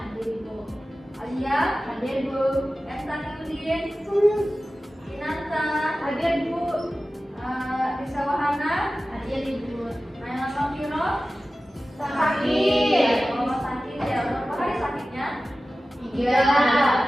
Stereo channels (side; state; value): both; normal; correlation 0.95